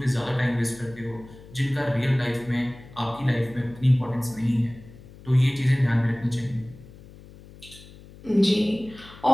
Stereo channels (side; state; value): left; noise; hum, 20 dB below the sound